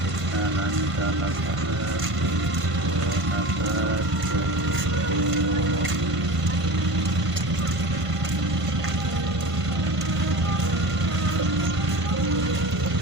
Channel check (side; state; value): left; late; 1.5 ms